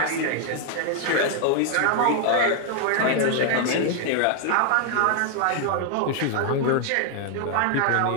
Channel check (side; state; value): both; different; correlation 0.00